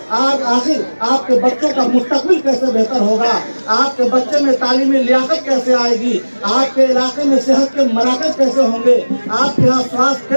आज आखिर आपके बच्चों का मुस्तकबिल कैसे बेहतर होगा, आपके बच्चे में तालीमी लियाकत कैसे आएगी, आपके इलाके में सेहत के मराकज कैसे होंगे, आपके यहाँ स्वास्थ्य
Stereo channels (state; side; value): inverted; both; correlation -1.00